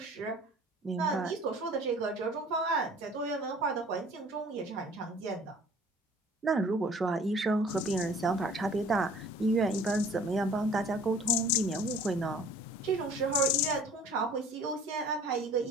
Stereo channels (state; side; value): normal; both; correlation 0.49